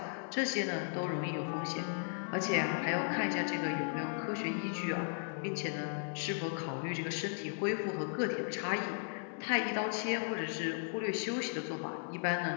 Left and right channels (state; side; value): silent; right; 54 dB below the other